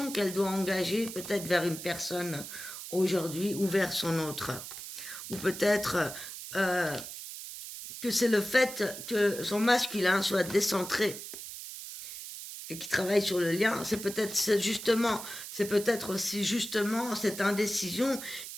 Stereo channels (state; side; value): noise; right; hiss, 10 dB below the sound